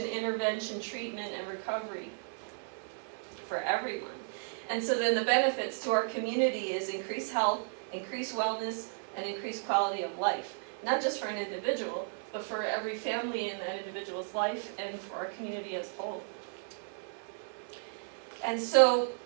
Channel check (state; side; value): silent; left; 55 dB below the other